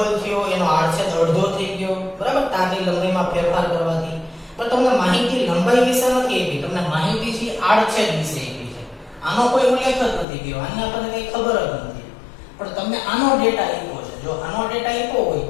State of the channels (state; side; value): drops out; right; at 10.2 s